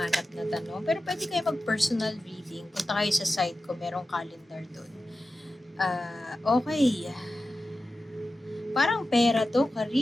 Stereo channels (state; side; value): normal; both; correlation 0.93